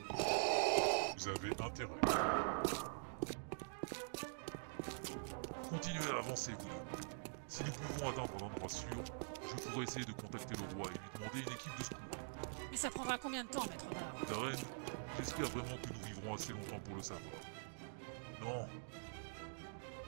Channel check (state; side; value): silent; left; digital silence